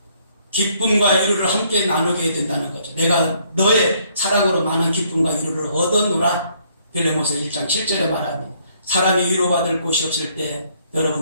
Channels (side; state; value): both; inverted; correlation -0.66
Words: 기쁨과 위로를 함께 나누게 된다는 거죠. 내가 너의 사랑으로 많은 기쁨과 위로를 얻어노라. 빌레몬서 1장 7절에 말하는 사람이 위로받을 곳이 없을 때